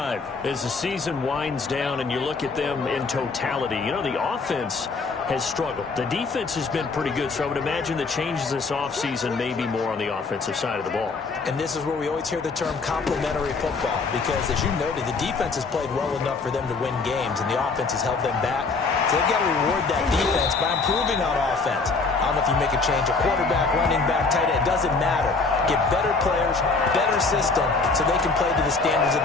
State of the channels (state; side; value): quieter; right; 4.2 dB